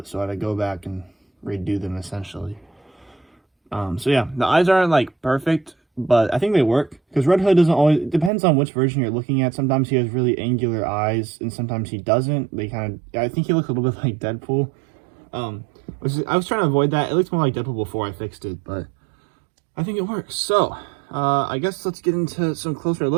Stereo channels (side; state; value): left; drops out; at 8.3 s